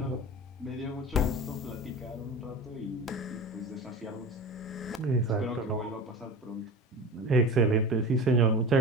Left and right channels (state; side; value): normal; both; correlation 0.32